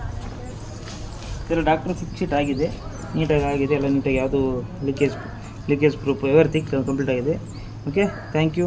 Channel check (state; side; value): identical; both; correlation 1.00